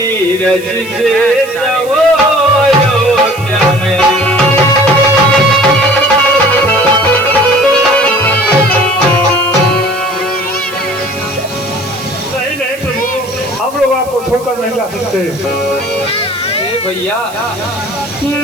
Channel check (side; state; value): right; noise; hiss, 19 dB below the sound